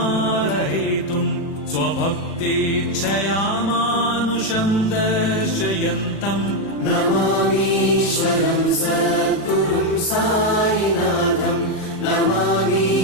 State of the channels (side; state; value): right; late; 36 ms